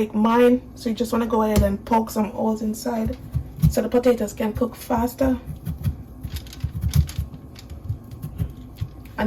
mine, so you just want to go ahead and poke some holes inside so the potatoes can cook faster.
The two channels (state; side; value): identical; both; correlation 1.00